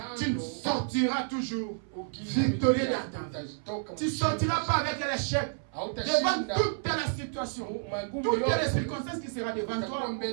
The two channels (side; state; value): left; silent; 58 dB below the other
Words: tu sortiras toujours victorieux dans ta vie. Tu ne sortiras pas avec l'échec. Devant toute la situation, toutes les circonstances qui seront devant toi,